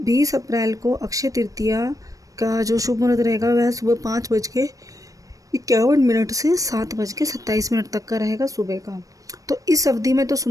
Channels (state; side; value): late; left; 0.16 ms